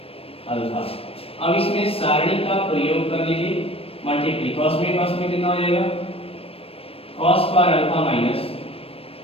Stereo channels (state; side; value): late; right; 0.28 ms